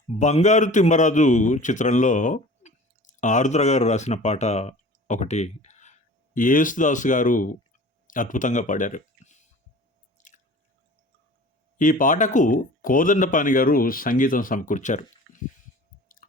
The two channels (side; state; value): both; normal; correlation 0.42